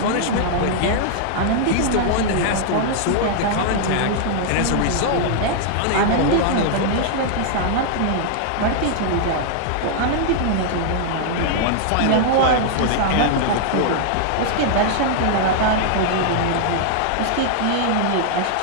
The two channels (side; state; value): both; different; correlation -0.01